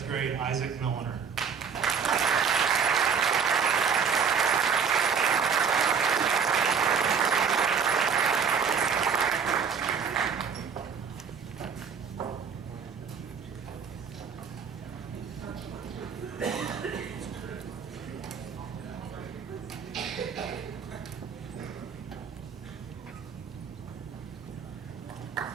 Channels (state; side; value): quieter; left; 6.4 dB